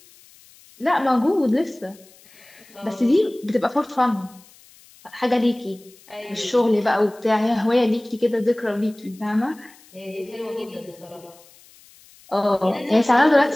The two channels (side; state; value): left; noise; hiss, 26 dB below the sound